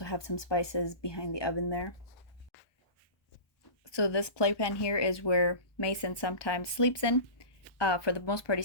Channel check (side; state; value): right; late; 1.2 ms